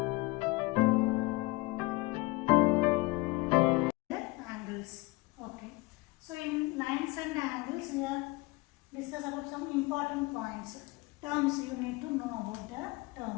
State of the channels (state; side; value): quieter; right; 23.2 dB